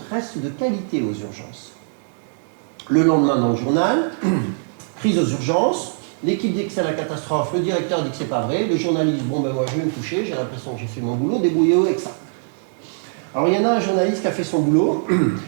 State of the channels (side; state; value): left; silent; 65 dB below the other